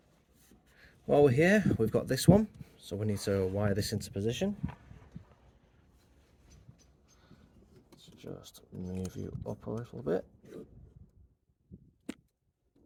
While we're here, we've got this one, so we need to wire this into position. Let's just move you up a little bit so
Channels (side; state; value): both; identical; correlation 1.00